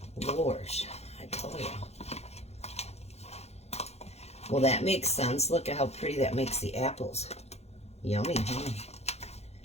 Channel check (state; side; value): late; right; 0.31 ms